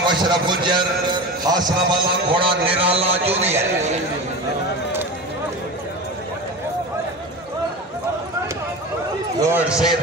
अशरफ गुजर हासना वाला घोड़ा निराला जूनियर लॉर्ड सैयद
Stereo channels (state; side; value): normal; both; correlation 0.28